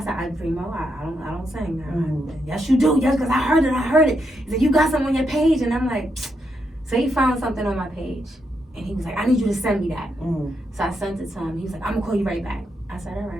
Remo, I don't sing now. Yes, you do. Yes, because I heard it. He said, you got something on your page. And I'm like, so he found something on my page. And he was like, I need you to send me that. So I sent it to him. He was like, I'm going to call you right back. I said, all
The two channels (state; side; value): normal; both; correlation 0.81